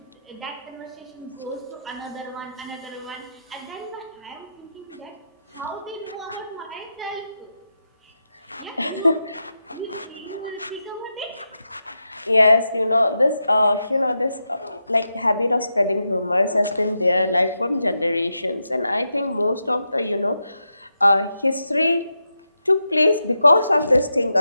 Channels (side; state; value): both; inverted; correlation -0.87